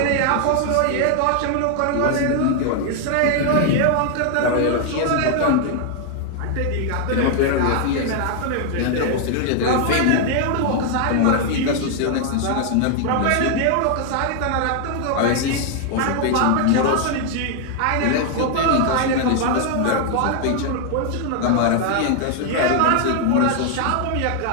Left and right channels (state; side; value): different; both; correlation 0.00